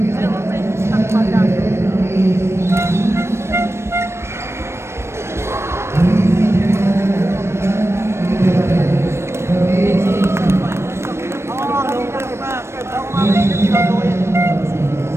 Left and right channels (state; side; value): late; left; 0.13 ms